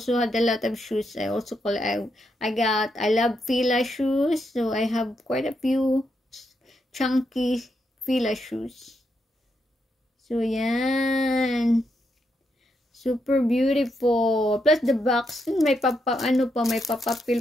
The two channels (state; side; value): normal; both; correlation 0.81